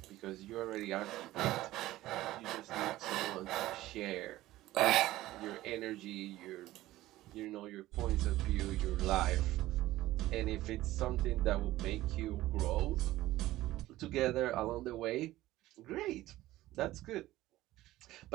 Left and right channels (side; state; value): left; quieter; 16.2 dB